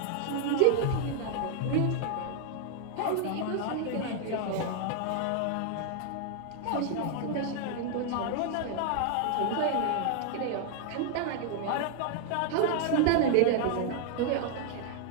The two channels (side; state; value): both; different; correlation 0.00